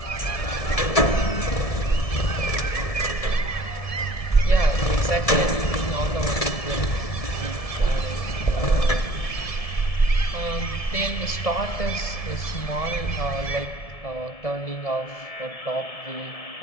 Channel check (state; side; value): late; right; 1.7 ms